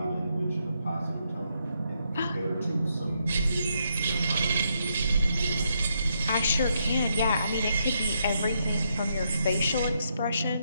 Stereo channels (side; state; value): both; inverted; correlation -0.78